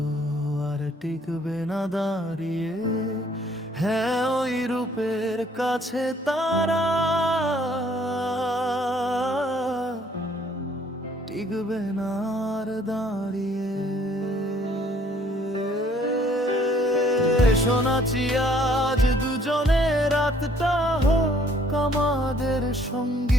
আর টিকবে না দাঁড়িয়ে। হ্যাঁ, ওই রূপের কাছে তারা টিকবে না আর দাঁড়িয়ে। শোনাচ্ছি আজ দুজনে রাতটা হোক আমাদের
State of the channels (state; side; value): normal; both; correlation 0.61